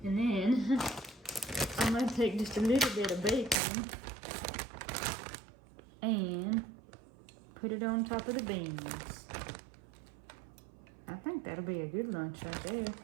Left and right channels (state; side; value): drops out; left; at 3.6 s